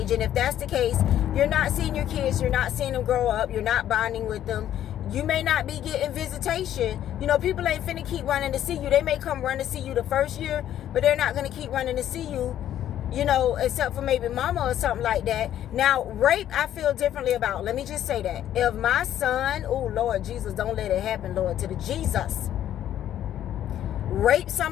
And if that's the case, you're not seeing your kids. You're not seeing them grow up. You're not bonding with them. You may not be getting visitation. You know, people ain't finna keep running to see you. They may come run to see you the first year, but they're not going to keep running to see you, you know, except for maybe mama or something like that. Now, rape, I feel differently about. Let me just say that. If my son, oh, Lord Jesus, don't let it happen, Lord, to the Jesus, rape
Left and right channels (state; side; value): quieter; right; 11.4 dB